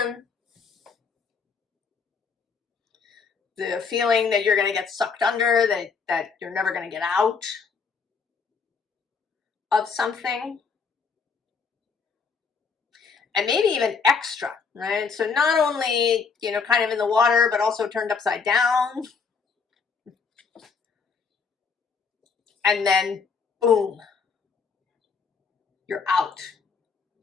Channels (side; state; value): right; quieter; 5.3 dB